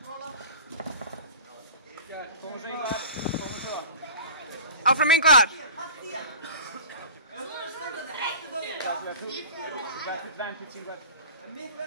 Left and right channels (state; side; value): inverted; both; correlation -0.38